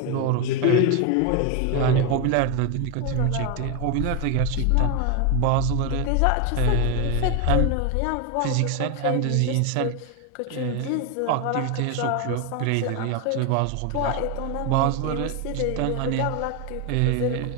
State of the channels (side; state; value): both; different; correlation 0.01